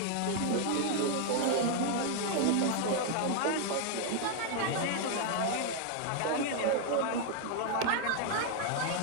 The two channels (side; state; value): both; different; correlation 0.00